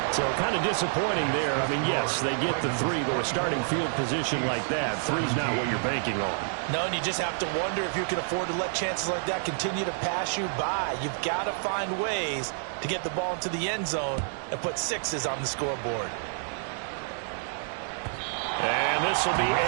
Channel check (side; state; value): left; silent; digital silence